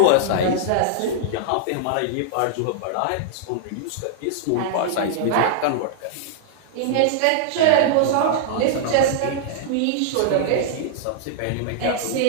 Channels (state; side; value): different; both; correlation -0.01